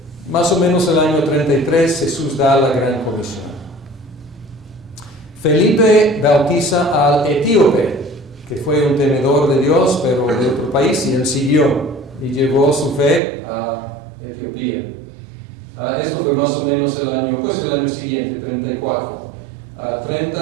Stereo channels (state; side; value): drops out; left; at 13.2 s